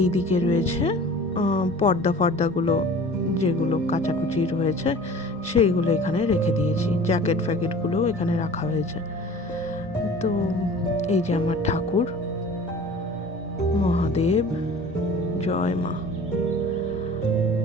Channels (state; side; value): normal; both; correlation 0.43